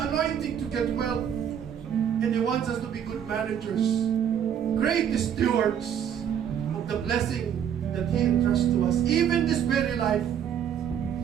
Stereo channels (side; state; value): left; quieter; 8.9 dB